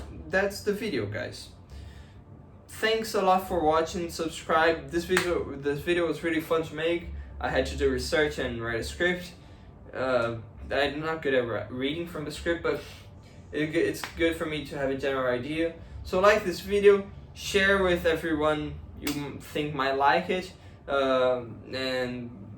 that's the video, guys. Thanks a lot for watching. Subscribe. This video was really fun to make. I had to do research and write a script. I'm not good at reading from the script, but it's good for me to have a general idea. So like this video, share with everyone you think might like it, and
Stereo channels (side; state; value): both; identical; correlation 1.00